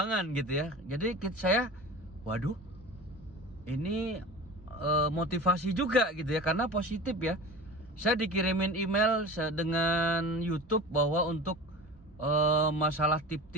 gitu ya. Jadi saya, waduh, ini motivasi juga gitu ya, karena positif ya. Saya dikirimin email dengan YouTube bahwa untuk masalah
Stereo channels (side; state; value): both; normal; correlation 0.34